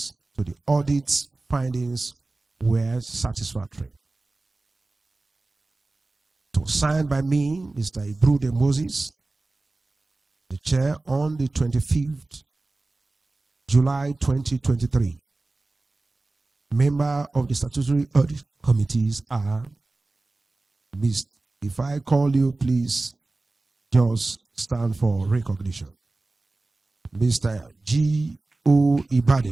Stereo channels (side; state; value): left; quieter; 3.2 dB